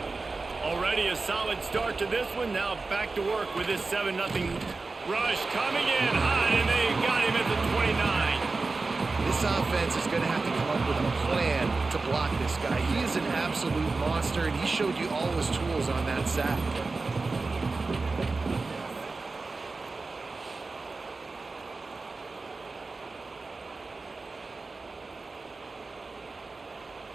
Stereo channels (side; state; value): left; quieter; 3.8 dB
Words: Already a solid start to this one. Now back to work with this 7-0 rush coming in hot, and they got him at the 29. This offense is going to have to come up with a plan to block this guy. He is an absolute monster, and he showed you all his tools on that sack.